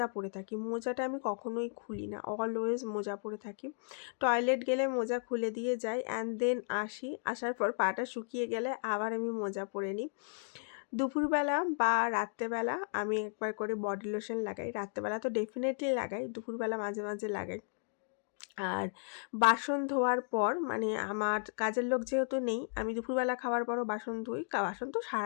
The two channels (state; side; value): silent; right; digital silence